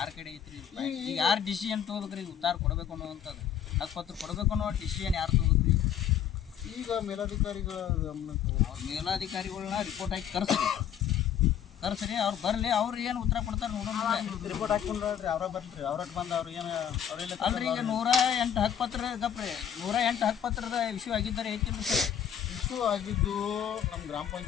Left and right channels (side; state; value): right; quieter; 9.1 dB